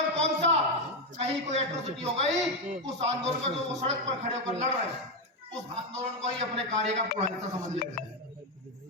कौन सा, कहीं कोई एट्रोसिटी हो गई, उस आंदोलन को जो सड़क पर खड़े होकर लड़ रहे हैं, उस आंदोलन को ही अपने कार्य का पूरा हिस्सा समझ लेते हैं।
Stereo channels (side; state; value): both; normal; correlation 0.07